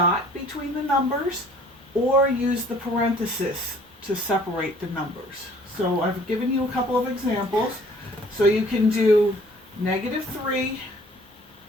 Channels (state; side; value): normal; both; correlation 0.55